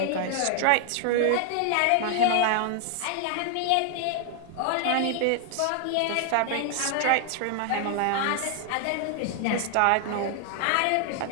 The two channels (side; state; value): both; different; correlation 0.00